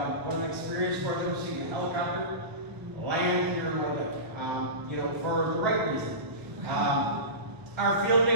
what an experience for them seeing a helicopter land here in Wyandotte, you know, for the right reason. Our field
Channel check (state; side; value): late; left; 1.0 ms